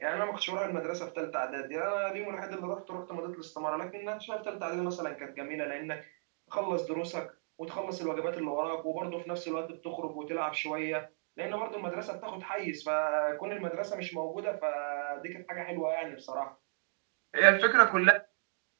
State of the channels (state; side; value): silent; left; digital silence